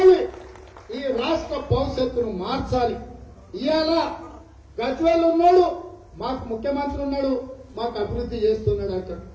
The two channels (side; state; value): both; identical; correlation 1.00